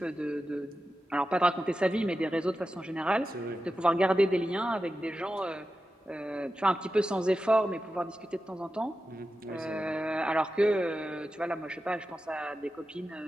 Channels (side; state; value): both; normal; correlation 0.92